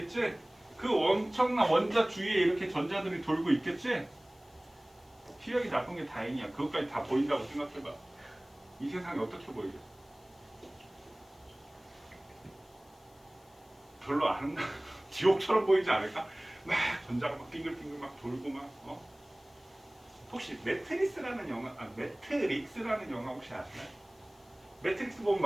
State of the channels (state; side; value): noise; left; hiss, 30 dB below the sound